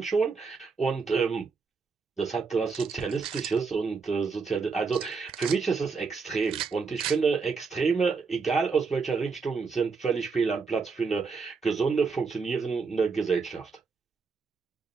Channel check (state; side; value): quieter; left; 4.9 dB